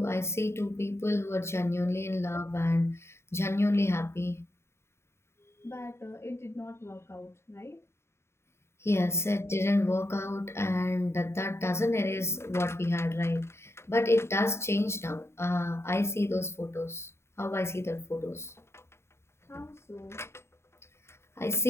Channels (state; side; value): late; right; 0.13 ms